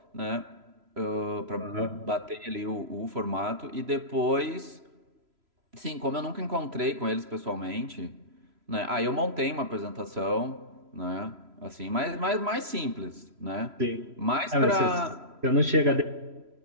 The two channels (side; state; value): left; late; 3.0 ms